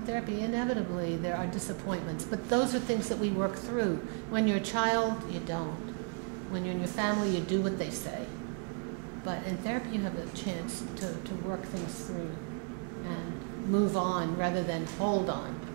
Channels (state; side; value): quieter; left; 36.0 dB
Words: therapy, inevitably there are disappointments, but those are things that we work through. When you're a child, you don't. When you're in your family, you do what they say. But in therapy, you have a chance to work things through and move on rather than hold on.